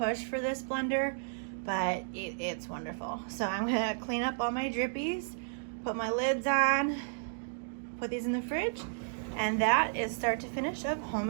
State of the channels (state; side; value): silent; left; digital silence